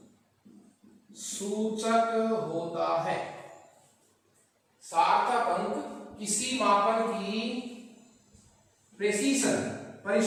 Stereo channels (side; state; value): both; identical; correlation 1.00